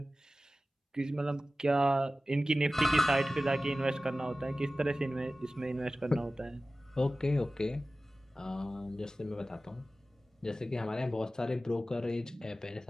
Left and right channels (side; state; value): both; normal; correlation 0.96